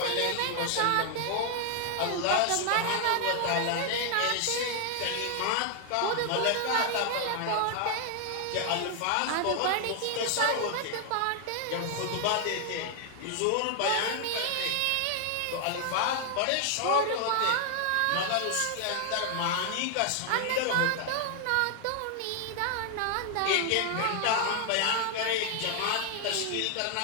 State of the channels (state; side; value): different; both; correlation 0.00